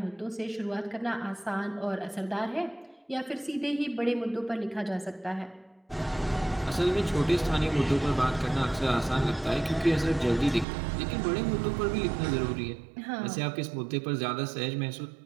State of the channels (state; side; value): drops out; left; at 10.7 s